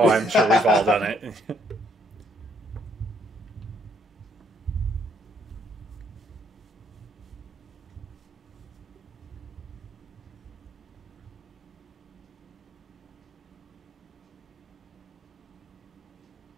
I'm sure we've all done it.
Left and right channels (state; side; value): normal; both; correlation 0.70